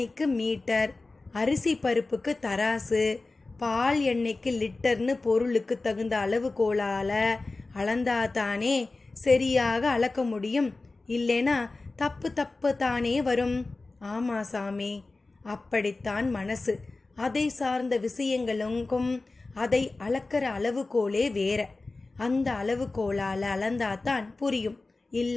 மீட்டர், அரிசி பருப்புக்கு தராசு, பால் எண்ணெய்க்கு லிட்டர்னு பொருளுக்கு தகுந்த அளவுகோலால அளந்தாதானே சரியாக அளக்க முடியும். இல்லைனா தப்பு தானே வரும். ஆமா சாமி, அப்படித்தான் மனசு. அதை சார்ந்த விஷயங்களுக்கும் அதை அளக்கிற அளவுகோலே வேற. அந்த அளவுகோலால அளந்தாதான் புரியும்.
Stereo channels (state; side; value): quieter; right; 3.4 dB